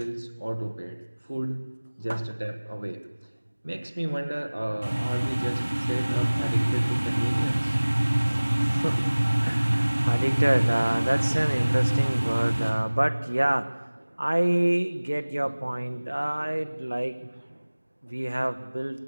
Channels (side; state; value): both; inverted; correlation -1.00